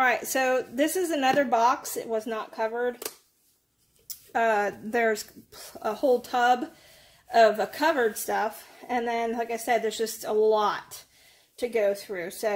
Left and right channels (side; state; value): both; identical; correlation 1.00